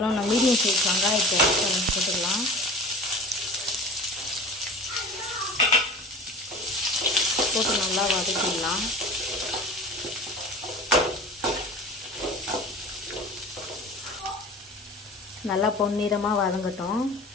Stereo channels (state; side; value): normal; both; correlation 0.39